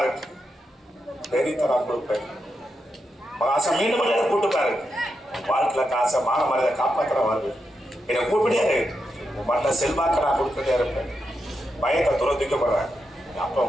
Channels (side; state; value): both; normal; correlation 0.86